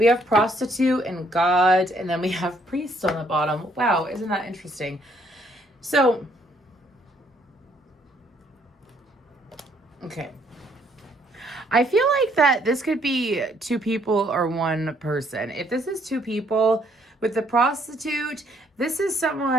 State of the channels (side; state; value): both; normal; correlation 0.67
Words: have prostitute and God, and then we have priest on the bottom. Wow, isn't that interesting? So, okay. I feel like that this could be two people or one person. If this is two people, with the prostitute, this is